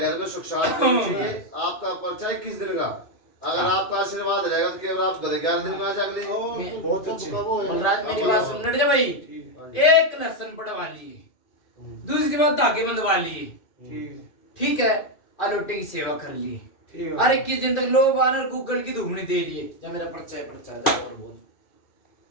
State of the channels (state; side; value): late; right; 2.5 ms